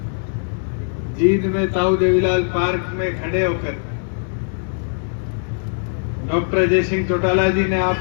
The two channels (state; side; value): silent; right; digital silence